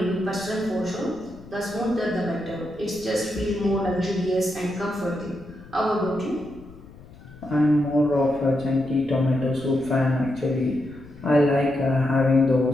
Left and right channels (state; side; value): noise; left; rumble, 20 dB below the sound